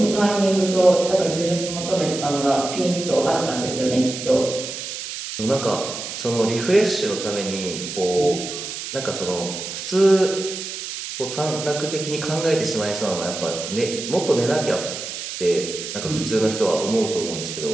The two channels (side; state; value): right; noise; hiss, 7 dB below the sound